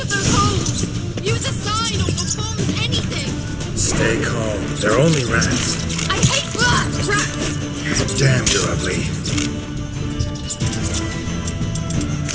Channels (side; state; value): both; identical; correlation 1.00